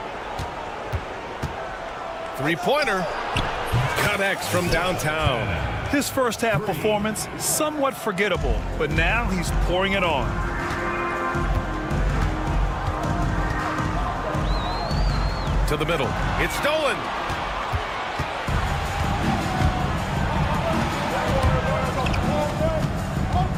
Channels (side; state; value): both; identical; correlation 1.00